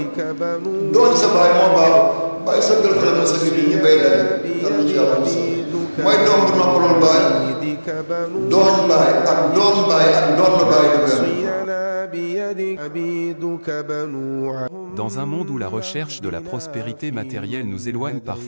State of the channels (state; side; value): inverted; both; correlation -1.00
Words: doon sa baay moo baax waaye sa gël fa la sa gir ñu bay daje dana ci yàlla mooy doom bu noppalul baay doon baay ak doon baay ak doon na baay du benn. Dans un monde où la recherche de la prospérité matérielle nous éloigne